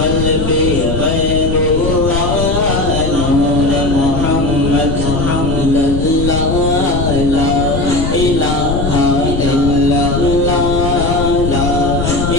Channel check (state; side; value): noise; left; rumble, 3 dB below the sound